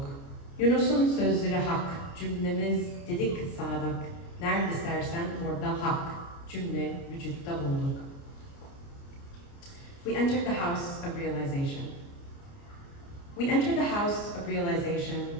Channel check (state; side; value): late; right; 29 ms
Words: Yunus'un sözleri hak, cümlemiz dedik sadık. Nerede istersen orada hak, cümle vücutta bulduk. We entered the house of realization. We entered the house of realization,